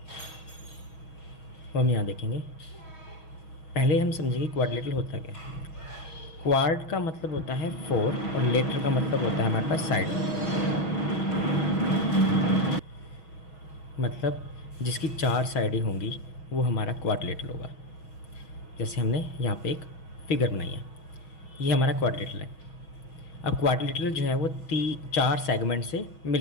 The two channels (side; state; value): right; late; 6.3 ms